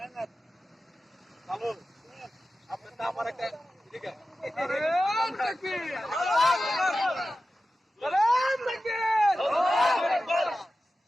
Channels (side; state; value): both; normal; correlation 0.94